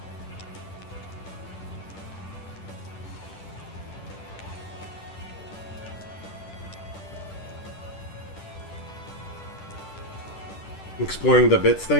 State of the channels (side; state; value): right; late; 10 ms